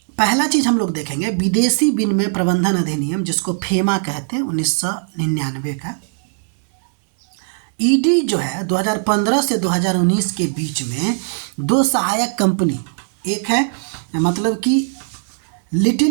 पहला चीज़ हम लोग देखेंगे विदेशी विनिमय प्रबंधन अधिनियम, जिसको फेमा कहते हैं, 1999 का। ईडी जो है 2015 से 2019 के बीच में दो सहायक कंपनी, एक है मतलब कि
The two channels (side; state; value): left; silent; digital silence